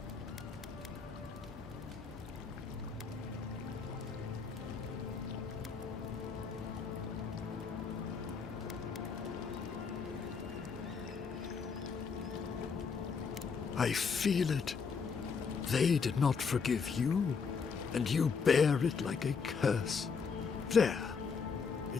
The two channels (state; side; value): quieter; right; 5.6 dB